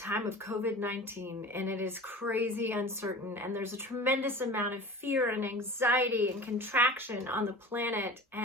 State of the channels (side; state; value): both; normal; correlation 0.37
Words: of COVID-19 and it is crazy uncertain, and there's a tremendous amount of fear and anxiety and contraction on the planet.